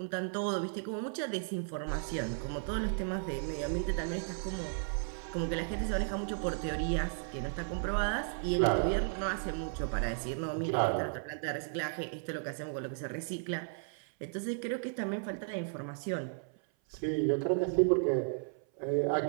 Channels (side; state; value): left; silent; 55 dB below the other